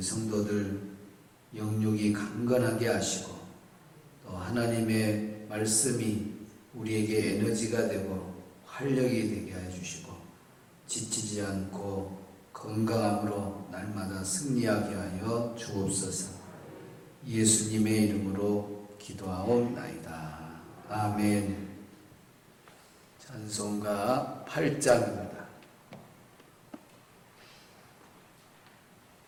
영육이 강건하게 하시고 또 하나님의 말씀이 우리에게 에너지가 되고 활력이 되게 해주시고 지치지 않고 건강함으로 날마다 승리하게 하여 주옵소서. 예수님의 이름으로 기도하옵나이다. 아멘. 찬송가 8장입니다.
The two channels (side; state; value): both; identical; correlation 1.00